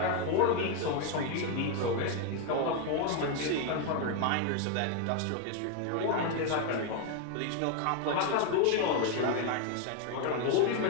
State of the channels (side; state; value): both; different; correlation 0.01